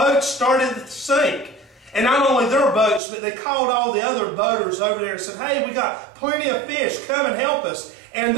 started to sink. And not only their boats, but they called all the other boaters over there and said, "Hey, we got plenty of fish, come and help us." And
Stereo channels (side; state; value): left; drops out; at 3.0 s